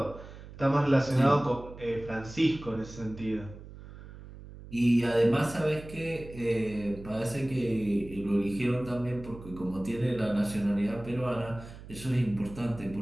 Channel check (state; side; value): noise; right; hum, 15 dB below the sound